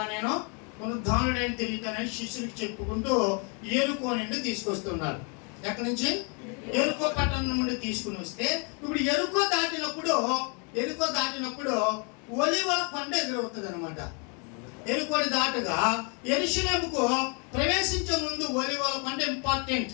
నేను పునరుద్ధానుడైన తిరుగుతానని శిష్యులకు చెప్పుకుంటూ యెరికో నుండి తీసుకొస్తున్నారు. ఎక్కడి నుంచి? యెరికో పట్టణం నుండి తీసుకుని వస్తే, ఇప్పుడు యెరికో దాటినప్పుడు ఒలీవల కొండ ఎదురవుతుంది అనమాట. యెరికోని దాటుగా యెరూషలేముకు ప్రవేశించే ముందు ఒలీవల కొండ ఇంపార్టెంట్.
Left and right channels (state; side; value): quieter; right; 35.9 dB